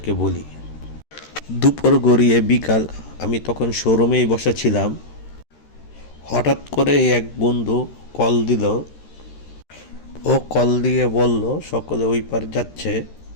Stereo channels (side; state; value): right; late; 13 ms